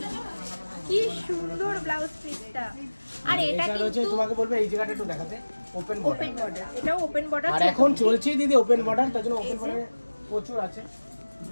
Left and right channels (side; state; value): both; inverted; correlation -1.00